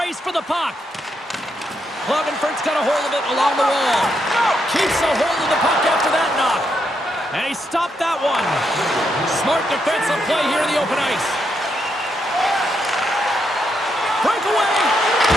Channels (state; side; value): normal; both; correlation 0.80